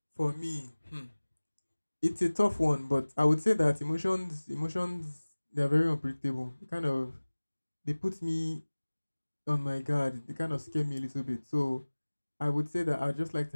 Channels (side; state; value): both; inverted; correlation -1.00